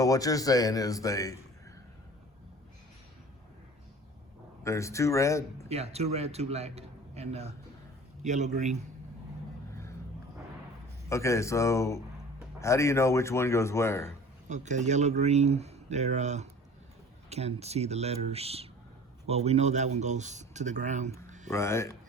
what you're saying is there's 2 red? Yeah, 2 red, 2 black, and yellow, green. Okay, so how do you know which one goes where? Okay, yellow, green, they're can't see the letters. Well, we know that one goes to the ground. Right.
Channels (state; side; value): normal; both; correlation 0.43